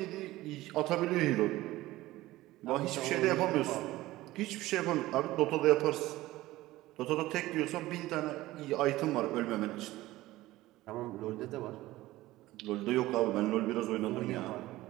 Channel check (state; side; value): quieter; left; 17.2 dB